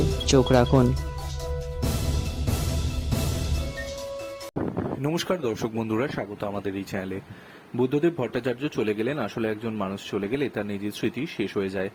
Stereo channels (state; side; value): identical; both; correlation 1.00